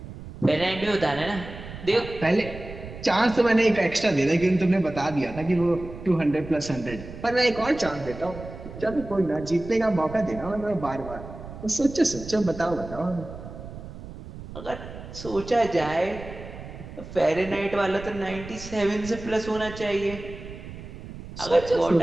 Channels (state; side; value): noise; right; rumble, 13 dB below the sound